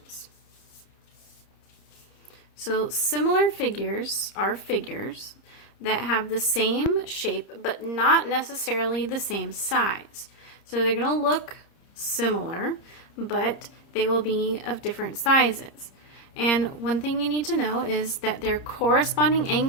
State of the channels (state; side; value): late; right; 30 ms